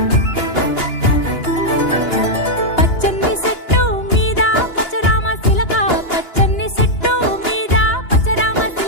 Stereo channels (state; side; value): late; right; 2.9 ms